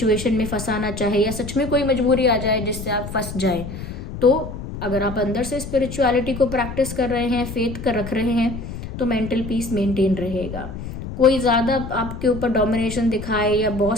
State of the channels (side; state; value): left; noise; rumble, 9 dB below the sound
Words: में फंसाना चाहे, या सच में कोई मजबूरी आ जाए जिससे आप फंस जाए, तो अगर आप अंदर से स्पिरिचुअलिटी को प्रैक्टिस कर रहे हैं, फेथ कर रख रहे हैं, तो मेंटल पीस मेंटेन रहेगा। कोई ज़्यादा आपके ऊपर डोमिनेशन दिखाए या